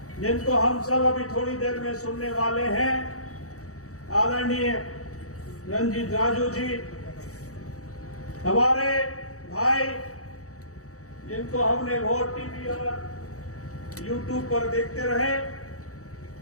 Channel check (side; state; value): right; late; 0.65 ms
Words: जिनको हम सब अभी थोड़ी देर में सुनने वाले हैं, आदरणीय रंजीत राजू जी, हमारे भाई जिनको हमने वोट टीवी और यूट्यूब पर देखते रहे,